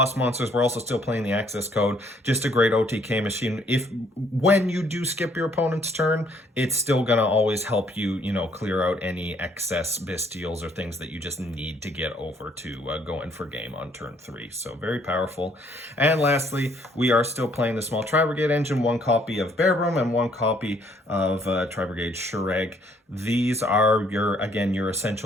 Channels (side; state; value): both; normal; correlation 0.65